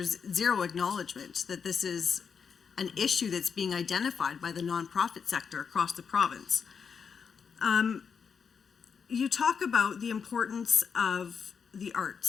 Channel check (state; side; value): quieter; right; 6.3 dB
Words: zero acknowledgement that this is an issue that's being identified by the nonprofit sector across the province. You talk about the importance of the